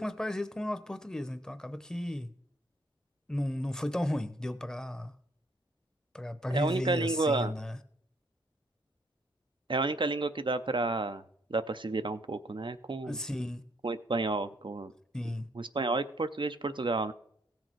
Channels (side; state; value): both; normal; correlation 0.67